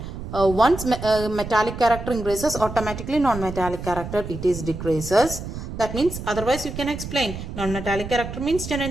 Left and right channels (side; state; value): right; noise; rumble, 8 dB below the sound